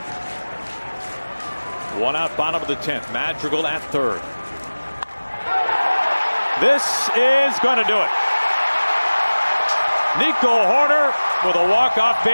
1 out, bottom of the 10th. Madrigal at third. This is going to do it. Nico Hoerner with a walk-off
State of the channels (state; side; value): inverted; both; correlation -1.00